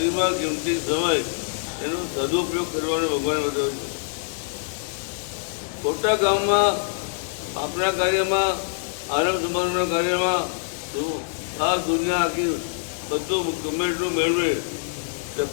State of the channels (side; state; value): right; silent; digital silence